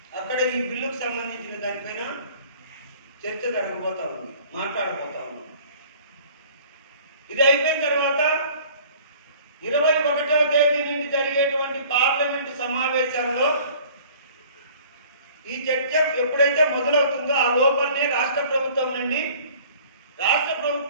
అక్కడ ఈ బిల్లుకు సంబంధించిన దానిపైన చర్చ జరగబోతా ఉంది, మాట్లాడబోతా ఉంది. ఇది అయిపోయిన తర్వాత 21వ తేదీ నుండి జరిగేటువంటి పార్లమెంటు సమావేశాల్లో ఈ చర్చ ఎప్పుడైతే మొదలవుతుందో ఆ లోపలనే రాష్ట్ర ప్రభుత్వం నుండి, రాష్ట్ర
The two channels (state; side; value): inverted; both; correlation -0.50